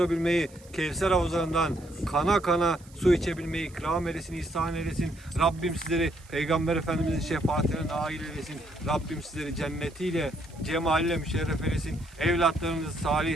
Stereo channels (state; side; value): noise; right; hiss, 25 dB below the sound